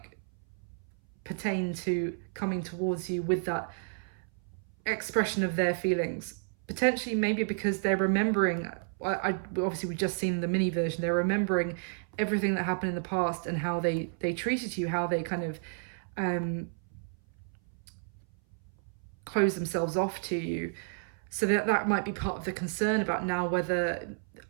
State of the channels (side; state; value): left; silent; 57 dB below the other